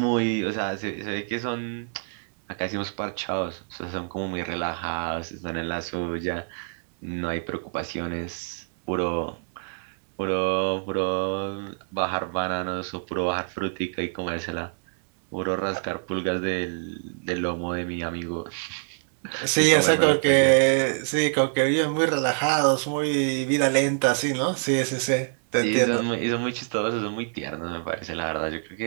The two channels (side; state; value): left; silent; digital silence